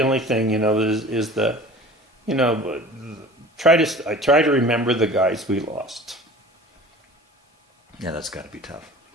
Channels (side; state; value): both; normal; correlation 0.42